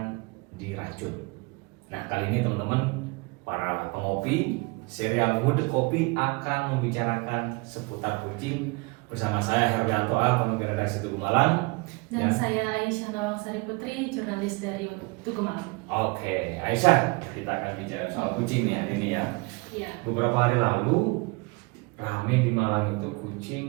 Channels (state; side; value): quieter; left; 28.2 dB